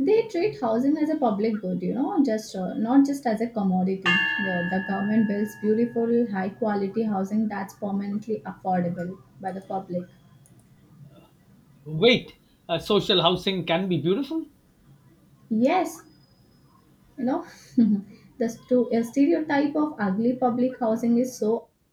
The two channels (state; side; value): identical; both; correlation 1.00